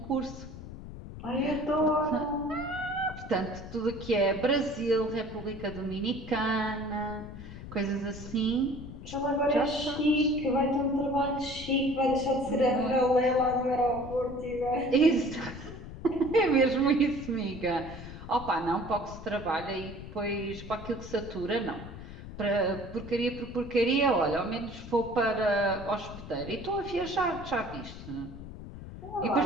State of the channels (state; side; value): noise; left; rumble, 12 dB below the sound